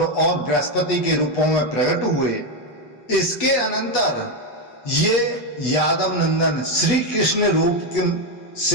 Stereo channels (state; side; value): late; right; 8.2 ms